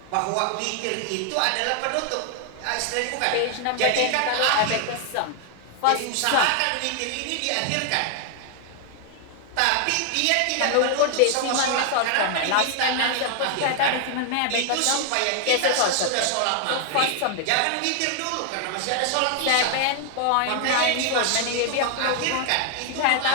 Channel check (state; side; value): different; both; correlation 0.00